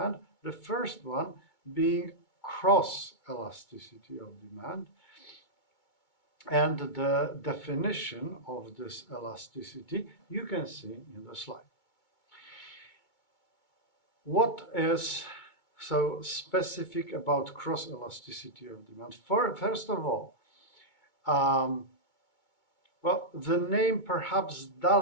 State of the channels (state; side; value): late; right; 2.2 ms